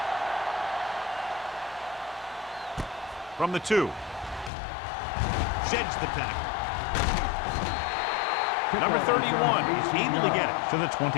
From the 2. Sheds the tackle. Number 31 is able to get it to the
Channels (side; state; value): right; drops out; at 4.5 s